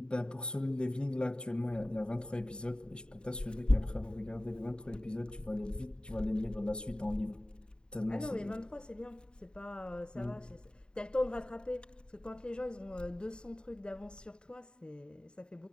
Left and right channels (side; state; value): right; late; 0.049 ms